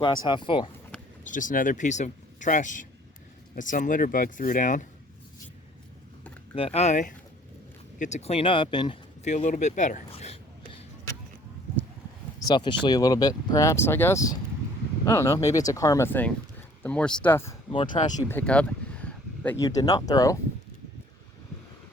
half full. It's just another piece of trash that some litter bug threw down that I get to clean up and feel a little bit better. Selfishly a little bit, perhaps, I guess. I don't know, maybe it's a karma thing. The more stuff, the more trash you pick up that you did not throw,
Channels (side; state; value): both; normal; correlation 0.55